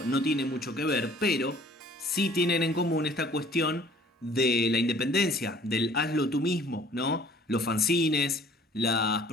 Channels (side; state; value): both; normal; correlation 0.53